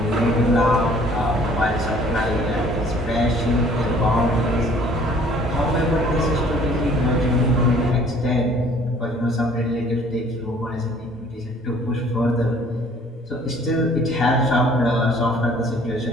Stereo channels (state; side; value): normal; both; correlation 0.55